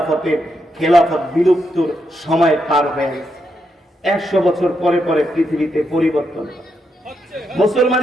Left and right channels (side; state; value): both; normal; correlation 0.82